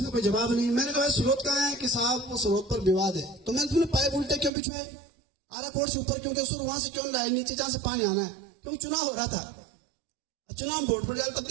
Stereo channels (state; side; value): drops out; left; at 4.5 s